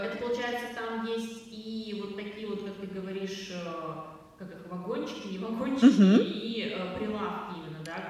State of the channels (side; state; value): both; identical; correlation 1.00